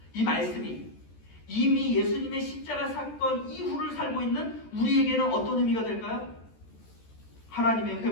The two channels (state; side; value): late; right; 14 ms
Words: 이 말씀이 이미 예수님의 십자가 사건 이후를 살고 있는 우리에게는 어떤 의미가 될까요? 하나님의